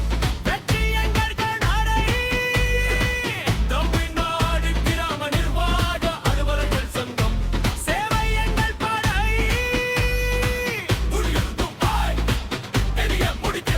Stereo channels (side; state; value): both; identical; correlation 1.00